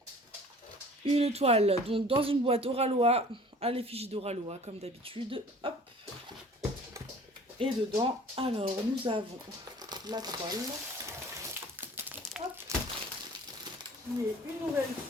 une toile, donc dans une boîte Oralois, à l'effigie d'Oralois, comme d'habitude. Hop. Et dedans, alors, nous avons la toile. Hop. Qui est une nouvelle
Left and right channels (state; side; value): normal; both; correlation 0.47